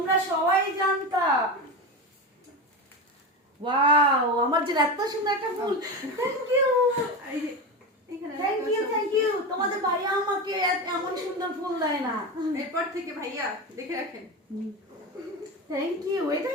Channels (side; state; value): both; normal; correlation 0.21